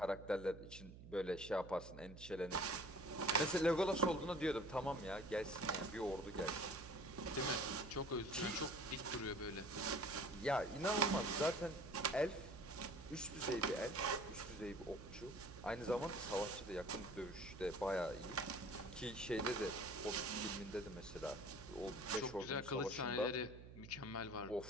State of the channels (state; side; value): noise; right; hum, 14 dB below the sound